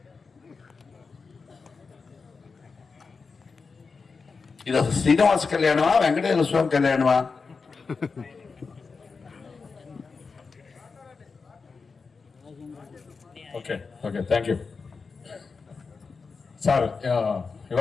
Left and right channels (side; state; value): right; quieter; 4.8 dB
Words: ఇది అసలు శ్రీనివాస కళ్యాణమా వెంకటేశ్వర స్వామి కళ్యాణమా? Okay thank you sir.